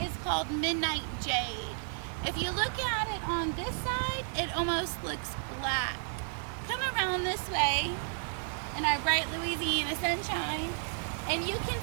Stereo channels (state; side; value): silent; left; 56 dB below the other